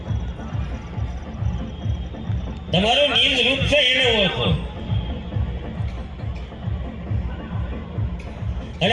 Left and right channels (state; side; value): identical; both; correlation 1.00